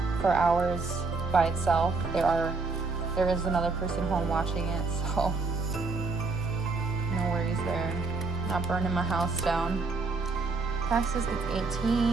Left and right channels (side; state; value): left; quieter; 4.0 dB